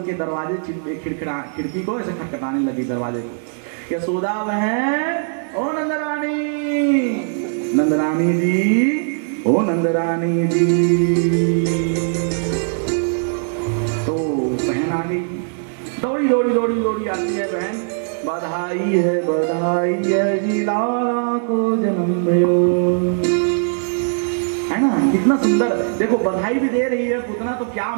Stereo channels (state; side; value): silent; left; digital silence